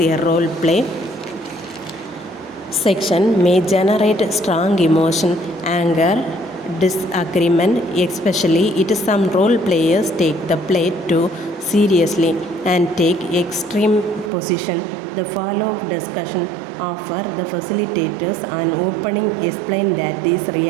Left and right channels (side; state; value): left; drops out; at 14.3 s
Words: role play section may generate strong emotion, anger, disagreement, especially if some role players take the play too seriously and take extreme position. The follow-up discussion offer the facilitators an opening explain that these